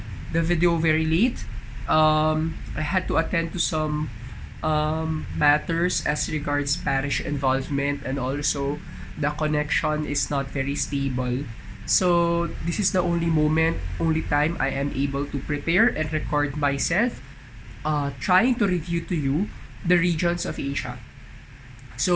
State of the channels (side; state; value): both; identical; correlation 1.00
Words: the video very late. I had to attend to some matters as regards parish involvement, and also the connection is not very stable. So this is the only time I am able to prepare and record myself, trying to review to you the regions of Asia.